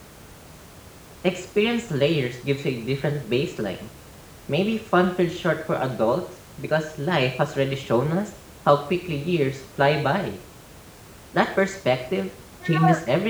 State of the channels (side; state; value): both; identical; correlation 1.00